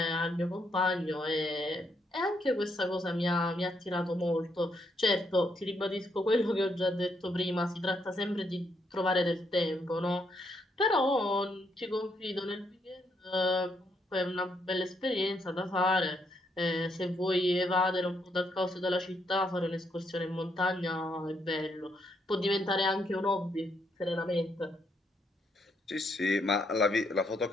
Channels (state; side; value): normal; both; correlation 0.76